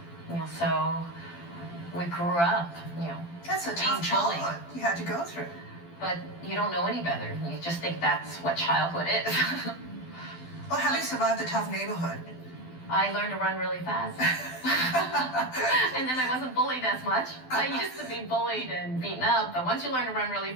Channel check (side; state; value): right; late; 12 ms